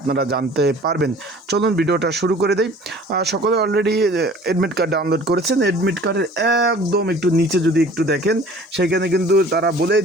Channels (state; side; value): normal; both; correlation 0.48